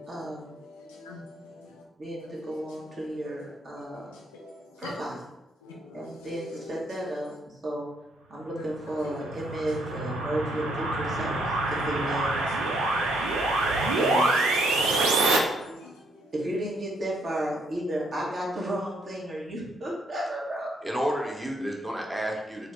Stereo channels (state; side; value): normal; both; correlation 0.71